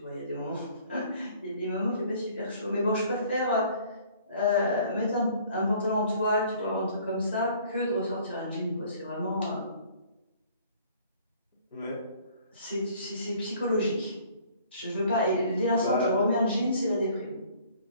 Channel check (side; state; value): both; inverted; correlation -0.55